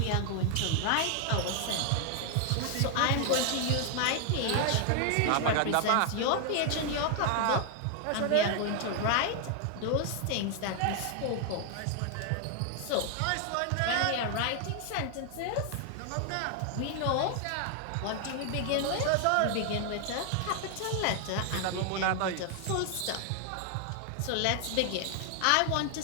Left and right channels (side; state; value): both; different; correlation 0.00